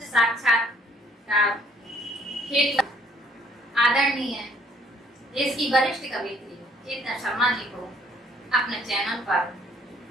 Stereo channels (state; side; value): normal; both; correlation 0.62